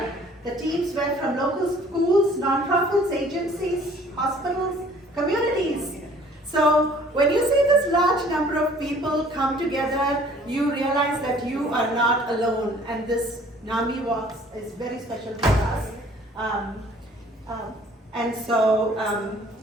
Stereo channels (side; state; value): both; normal; correlation 0.54